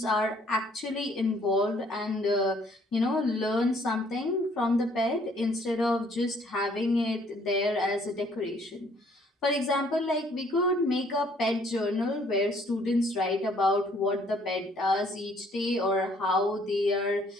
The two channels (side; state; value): both; normal; correlation 0.62